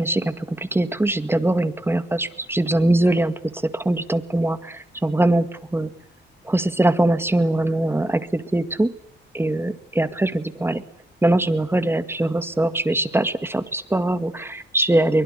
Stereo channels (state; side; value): normal; both; correlation 0.83